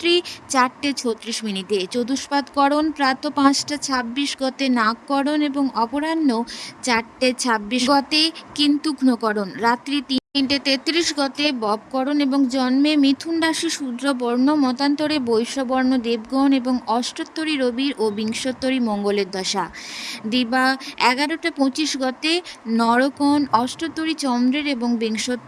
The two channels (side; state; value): both; identical; correlation 1.00